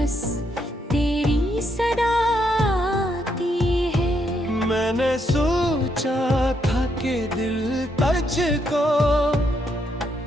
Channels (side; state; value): both; normal; correlation 0.77